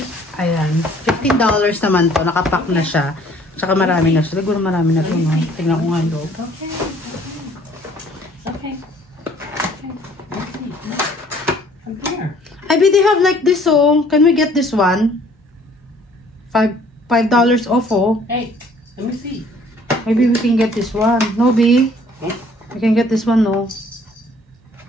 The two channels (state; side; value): normal; both; correlation 0.57